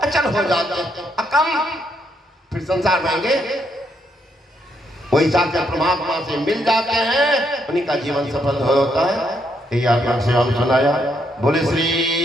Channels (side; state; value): both; normal; correlation 0.75